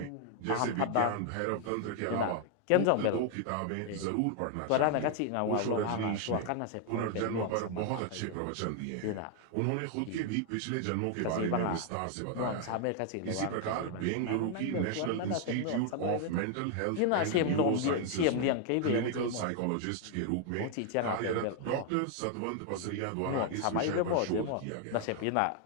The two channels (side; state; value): both; different; correlation 0.00